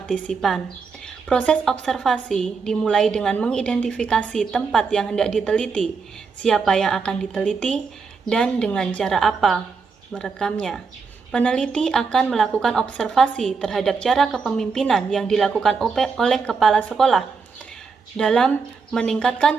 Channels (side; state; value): left; quieter; 5.1 dB